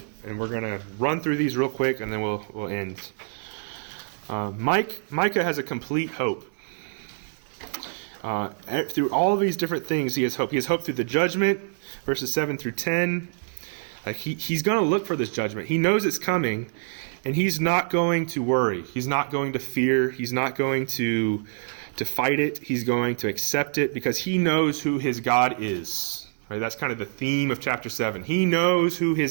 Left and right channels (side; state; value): left; silent; digital silence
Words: And we're going to run through these real quick, and then we'll end. Micah has a complete hope. Through all of these different things, he has hope. He has hope through the judgment, verses 7 through 10. Like he's going to look for this judgment. He knows it's coming, and he's not going to worry. He's not going to fear. He's not going to fight it. He's going to accept it because he knows who his God is. Right? That's kind of the theme of chapter 7. He knows who